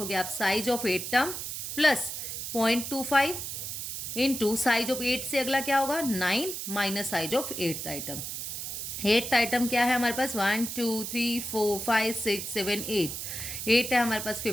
आप size of 8 term plus 0.25 into size of 8 से अगला क्या होगा 9 minus size of 8th item. 8th item क्या है हमारे पास 1 2 3 4 5 6 7 8 है हमारे पास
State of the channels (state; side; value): noise; right; hiss, 5 dB below the sound